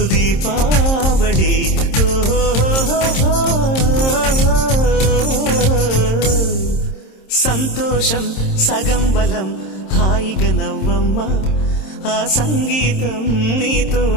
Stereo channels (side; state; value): right; late; 26 ms